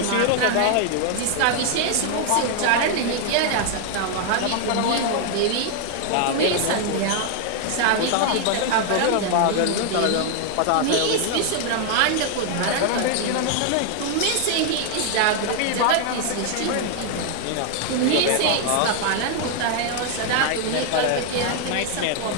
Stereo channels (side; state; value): both; different; correlation 0.00